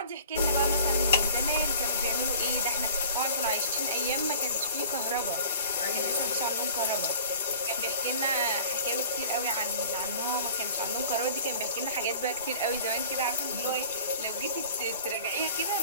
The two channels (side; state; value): both; inverted; correlation -0.45